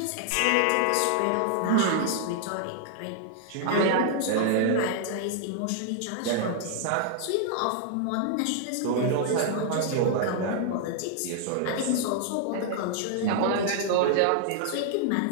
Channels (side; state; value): both; different; correlation 0.00